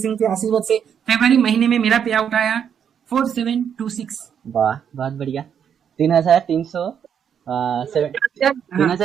के आशीर्वाद से फरवरी महीने में मेरा पे आउट आया 4726। वाह, बहुत बढ़िया। 3300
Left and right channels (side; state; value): left; quieter; 8.1 dB